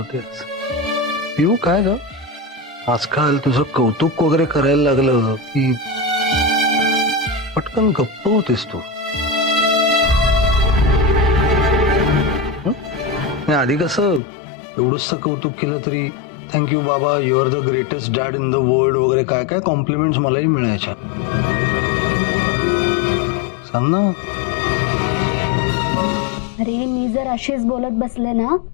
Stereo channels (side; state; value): right; drops out; at 14.2 s